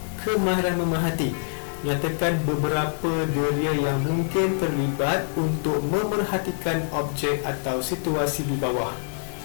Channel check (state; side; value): silent; right; digital silence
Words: kemahiran memerhati. Nyatakan beberapa deria yang mungkin terlibat untuk memerhatikan objek atau situasi di bawah.